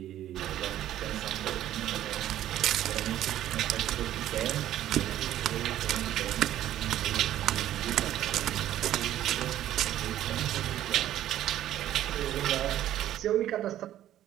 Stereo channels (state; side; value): quieter; left; 12.5 dB